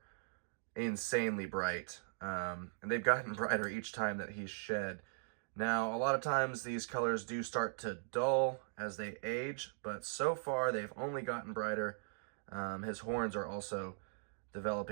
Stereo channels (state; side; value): silent; left; digital silence